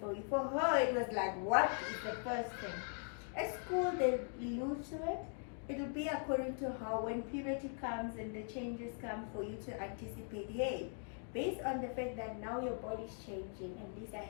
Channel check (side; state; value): right; silent; 51 dB below the other